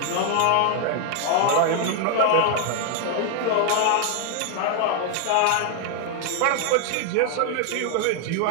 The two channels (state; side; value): different; both; correlation 0.00